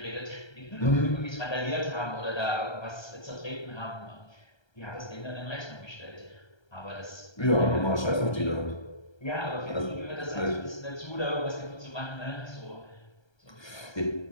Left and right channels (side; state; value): right; late; 1.3 ms